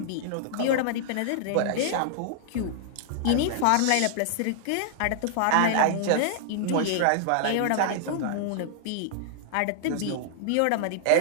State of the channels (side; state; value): both; different; correlation -0.01